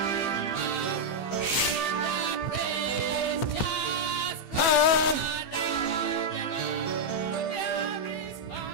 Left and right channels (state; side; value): late; right; 15 ms